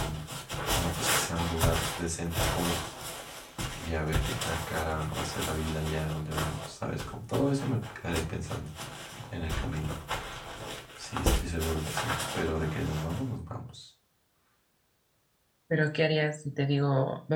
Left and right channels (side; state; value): both; identical; correlation 1.00